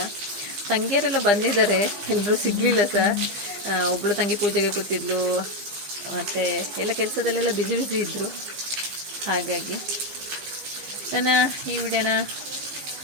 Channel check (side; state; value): left; late; 15 ms